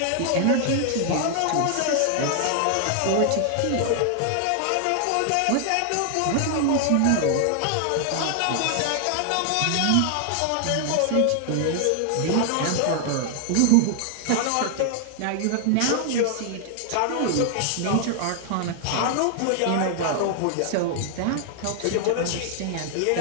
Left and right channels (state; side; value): different; both; correlation 0.00